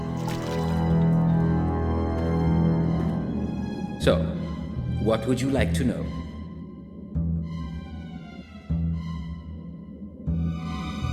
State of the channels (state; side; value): identical; both; correlation 1.00